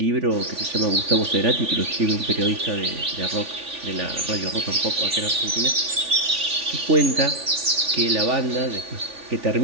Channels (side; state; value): left; late; 3.5 ms